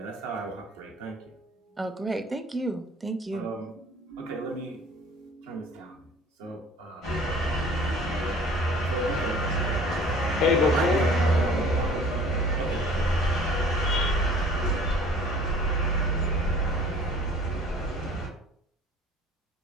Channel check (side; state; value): both; normal; correlation 0.49